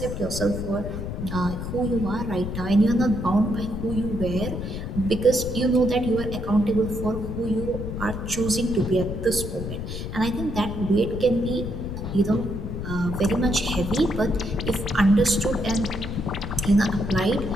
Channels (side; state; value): left; noise; rumble, 6 dB below the sound